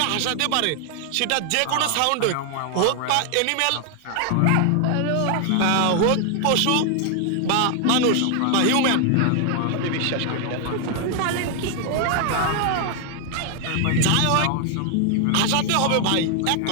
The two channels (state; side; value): different; both; correlation 0.00